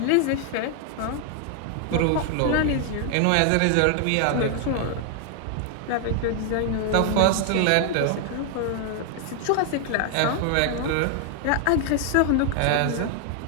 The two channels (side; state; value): both; different; correlation 0.00